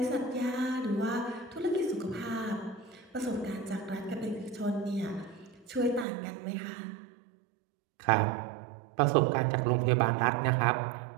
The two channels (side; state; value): left; drops out; at 6.1 s